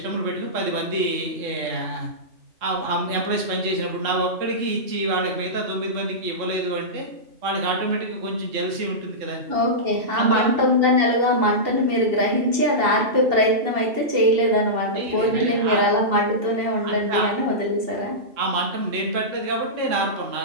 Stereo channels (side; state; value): left; late; 2.7 ms